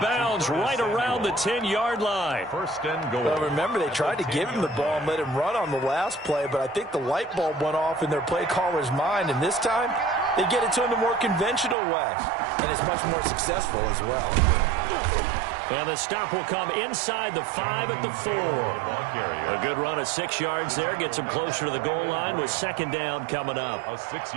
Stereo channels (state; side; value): drops out; left; at 11.8 s